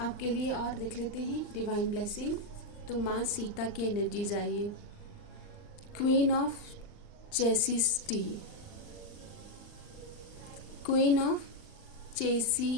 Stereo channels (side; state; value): right; late; 39 ms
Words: लिए और देख लेते हैं डिवाइन ब्लेसिंग। तो माँ सीता की एनर्जीज आइए। Queen of chastity, queen of